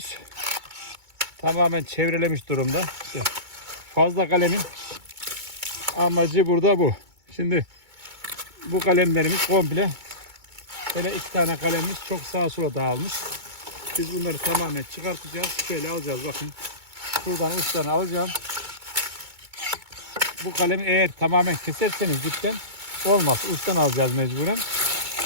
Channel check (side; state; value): left; late; 2.2 ms